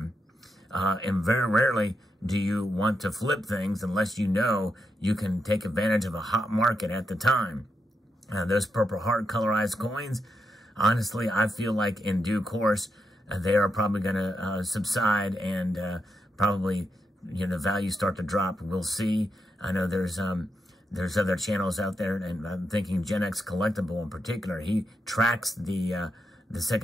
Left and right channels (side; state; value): both; normal; correlation 0.84